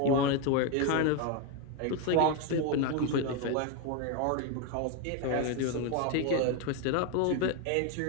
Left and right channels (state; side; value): different; both; correlation 0.02